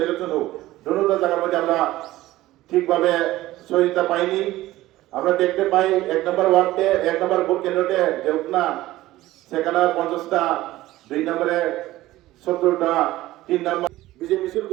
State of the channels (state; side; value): quieter; left; 16.5 dB